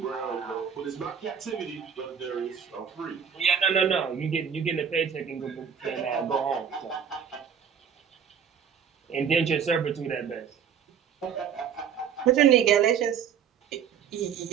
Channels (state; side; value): quieter; left; 7.6 dB